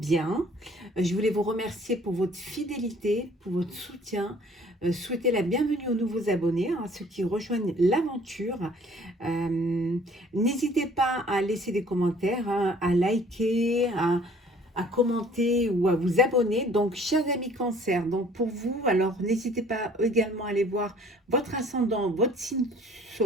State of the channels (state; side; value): normal; both; correlation 0.54